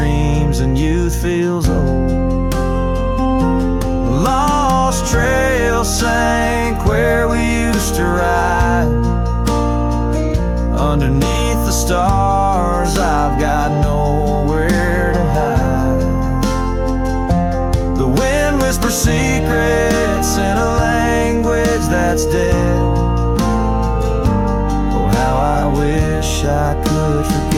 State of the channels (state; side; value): identical; both; correlation 1.00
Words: and youth feels old. Lost trail sank where we used to ride. Underneath the stars, I've got nowhere to hide. The wind whispers secrets in a language that's dead. Oh, how I wish I could